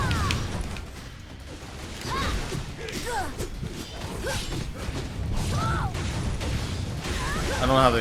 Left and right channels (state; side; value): identical; both; correlation 1.00